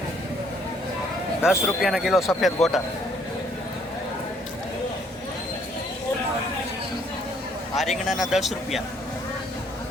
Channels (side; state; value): both; normal; correlation 0.65